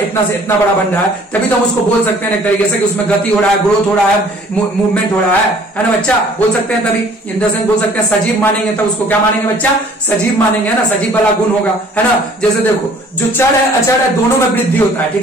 से इतना बड़ा बन रहा है, तभी तो हम उसको बोल सकते हैं एक तरीके से कि उसमें गति हो रहा है, ग्रोथ हो रहा है, मूवमेंट हो रहा है ना बच्चा, बोल सकते हैं। तभी इन द सेंस बोल सकते हैं सजीव मानेंगे, तो उसको क्या मानेंगे बच्चा, सजीव मानेंगे, है ना, सजीव वाला गुण होगा, है ना। जैसे देखो जो चर है अचर है, दोनों में वृद्धि होता है,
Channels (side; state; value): both; normal; correlation 0.54